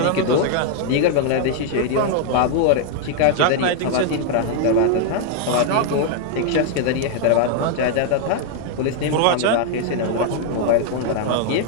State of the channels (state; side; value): different; both; correlation 0.00